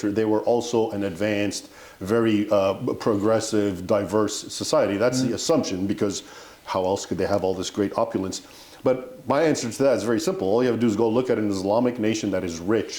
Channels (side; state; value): both; identical; correlation 1.00